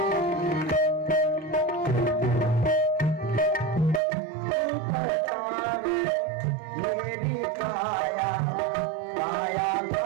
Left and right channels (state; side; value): drops out; left; at 4.0 s